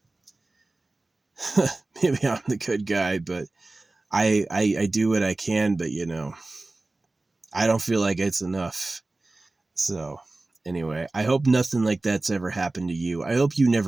Maybe I'm the good guy, but I do what I can, but you know, I don't feel like it's enough. So anyway, I hope nothing like that's ever happened to you. I hope you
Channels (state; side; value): quieter; left; 3.1 dB